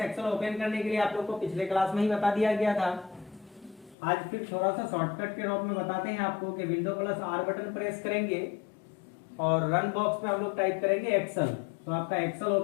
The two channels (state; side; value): drops out; right; at 4.0 s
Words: open करने के लिए आप लोग को पिछले क्लास में ही बता दिया गया था। आज फिर थोड़ा सा शॉर्टकट के रूप में बताते हैं आपको कि window plus are button press करेंगे और रन बॉक्स में हम लोग टाइप करेंगे एक्सेल, तो आपका एक्सेल